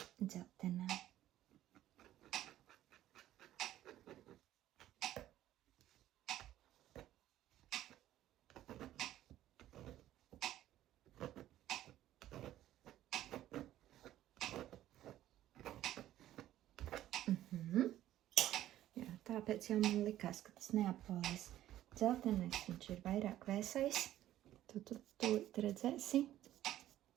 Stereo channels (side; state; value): left; quieter; 13.3 dB